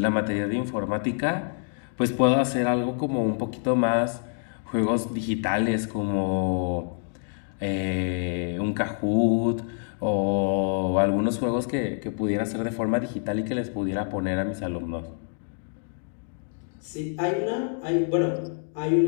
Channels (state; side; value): silent; right; 61 dB below the other